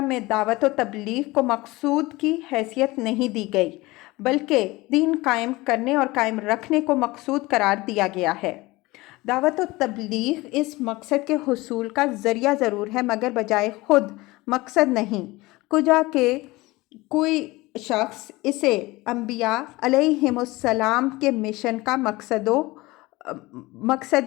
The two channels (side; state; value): right; quieter; 21.0 dB